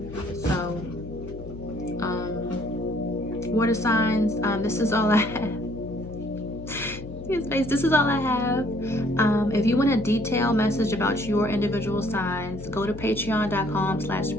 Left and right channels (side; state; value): left; noise; hum, 13 dB below the sound